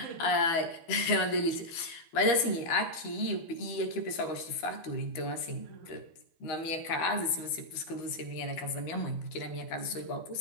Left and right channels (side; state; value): right; late; 13 ms